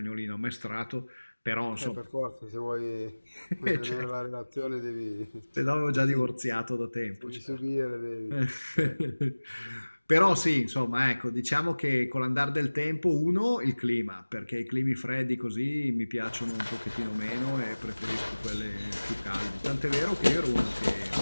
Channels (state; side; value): inverted; both; correlation -1.00